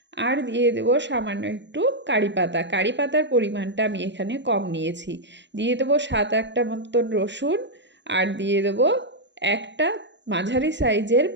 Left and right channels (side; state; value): left; late; 0.52 ms